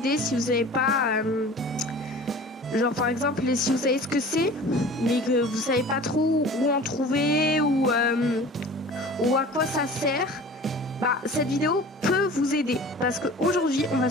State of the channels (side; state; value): both; normal; correlation 0.42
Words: si vous savez pas, genre par exemple si vous savez ce que c'est, mais que vous savez pas trop où en trouver ou à quoi ça sert. Bah cette vidéo peut vous aider parce qu'aujourd'hui on va